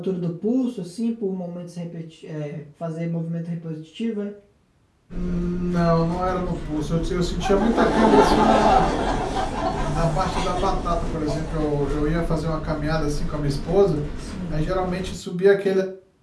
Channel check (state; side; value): identical; both; correlation 1.00